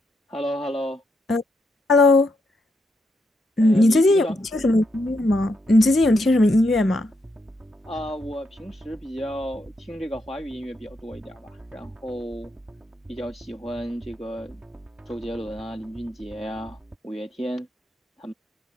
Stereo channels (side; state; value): both; normal; correlation 0.80